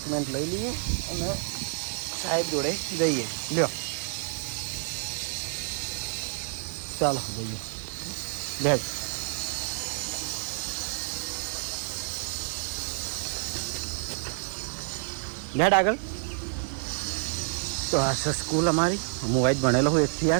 લઈ લઈએ અને સાહેબ જોડે જઈએ. લ્યો ચાલો જઈએ. બેઠ બેઠ આગળ. તો આ છે સ્કૂલ અમારી. હું વાઈટ ભણેલો હું 1 થી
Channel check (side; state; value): left; silent; 59 dB below the other